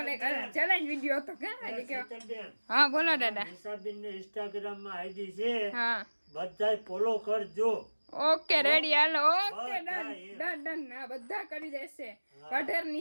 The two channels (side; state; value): both; inverted; correlation -1.00